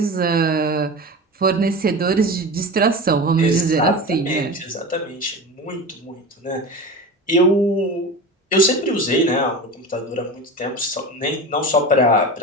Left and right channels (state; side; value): normal; both; correlation 0.29